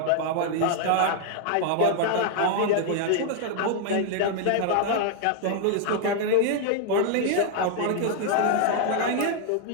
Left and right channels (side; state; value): both; different; correlation -0.01